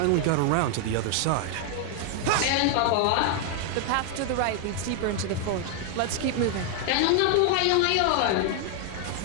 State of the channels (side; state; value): both; different; correlation 0.00